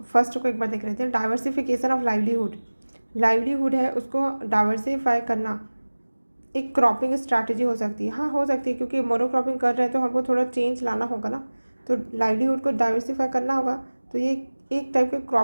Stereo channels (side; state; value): both; inverted; correlation -1.00